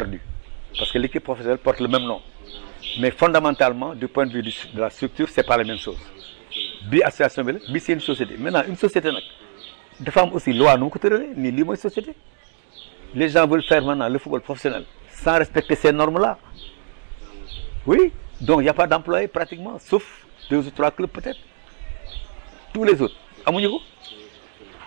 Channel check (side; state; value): left; silent; digital silence